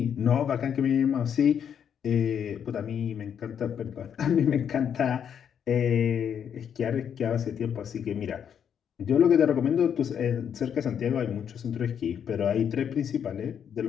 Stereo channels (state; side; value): quieter; right; 8.3 dB